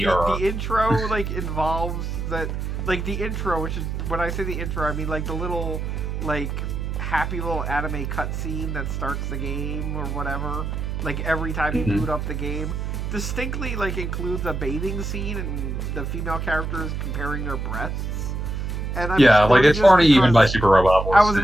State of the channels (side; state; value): right; noise; hum, 3 dB below the sound